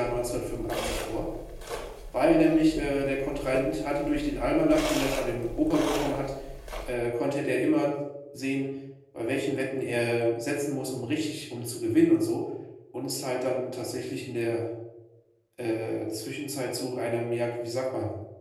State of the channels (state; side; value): identical; both; correlation 1.00